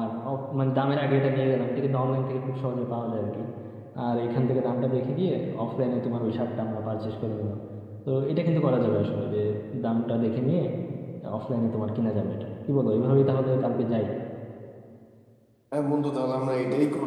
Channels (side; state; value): both; identical; correlation 1.00